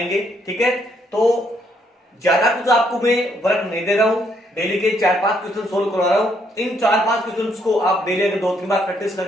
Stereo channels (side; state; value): both; normal; correlation 0.72